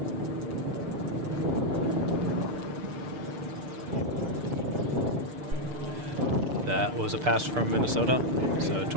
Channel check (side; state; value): left; late; 6.7 ms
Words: That was a pass from Minnesota, so